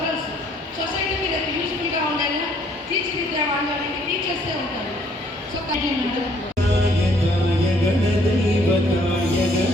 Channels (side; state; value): both; normal; correlation 0.64